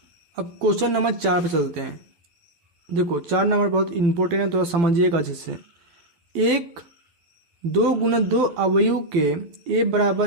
अब क्वेश्चन नंबर 4 पे चलते हैं। देखो 4 नंबर बहुत इंपॉर्टेंट है, तो समझिएगा अच्छे से। 2 गुना 2 अवयव के ए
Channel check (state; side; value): late; left; 12 ms